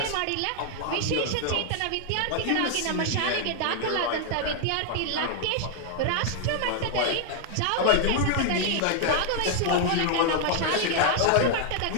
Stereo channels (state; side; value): different; both; correlation 0.00